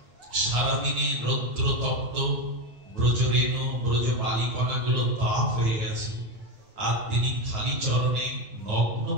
সারাদিনে রৌদ্র তপ্ত, ব্রজরেণু ব্রজ বালিকণা গুলো তাপ হয়ে গেছে, আর তিনি খালি চরণে নগ্ন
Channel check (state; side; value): late; left; 9.0 ms